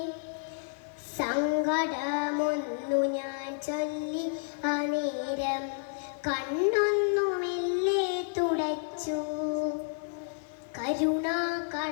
സങ്കടമൊന്നു ഞാൻ ചൊല്ലി അനേരം കണ്ണൊന്നു മെല്ലെ തുടച്ചു. കരുണാ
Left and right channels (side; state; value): right; silent; digital silence